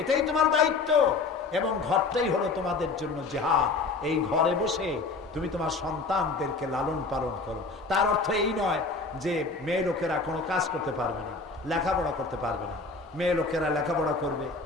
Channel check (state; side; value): quieter; right; 4.0 dB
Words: তোমার দায়িত্ব, এবং ঘরটাই হলো তোমাদের জন্য জিহাদ। এই ঘরে বসে তুমি তোমার সন্তানদেরকে লালন পালন করো। তার অর্থ এই নয় যে মেয়ে লোকেরা কোনো কাজ করতে পারবে না, লেখাপড়া করতে পারবে না। মেয়ে লোকেরা লেখাপড়া করবে,